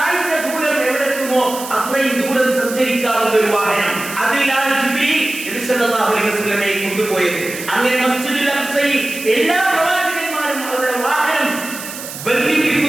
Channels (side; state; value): right; noise; hiss, 10 dB below the sound